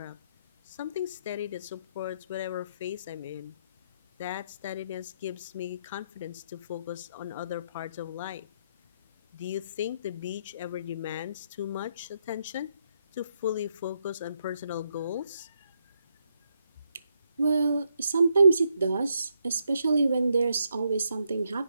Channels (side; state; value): both; inverted; correlation -0.77